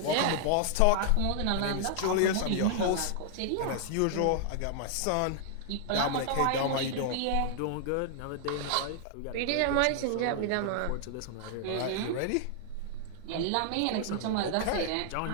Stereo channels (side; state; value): both; different; correlation 0.00